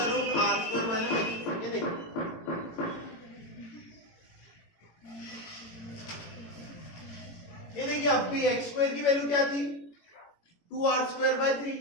ये देखो ये देखिए अब भी x² की वैल्यू क्या थी 2r² 3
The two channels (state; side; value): late; right; 18 ms